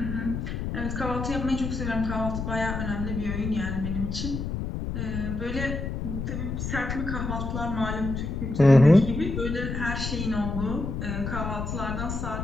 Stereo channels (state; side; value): noise; left; rumble, 3 dB below the sound